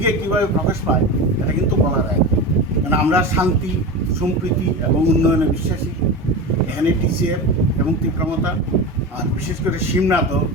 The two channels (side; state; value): both; normal; correlation 0.25